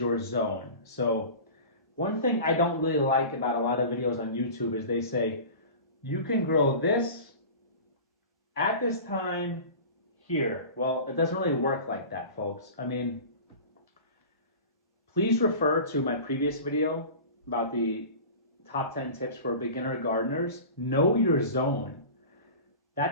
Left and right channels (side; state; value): both; inverted; correlation -0.36